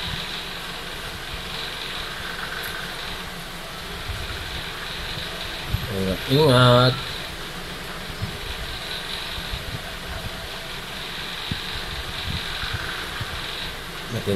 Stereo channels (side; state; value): both; identical; correlation 1.00